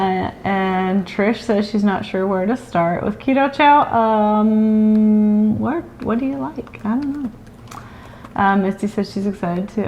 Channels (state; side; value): identical; both; correlation 1.00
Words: And Trish says she's not sure where to start with Keto Chow. What do you like? I don't know. Misty says she's excited